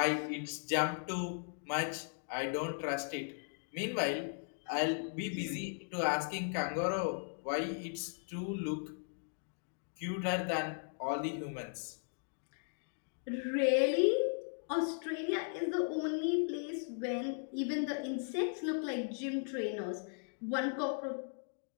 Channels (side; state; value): right; silent; digital silence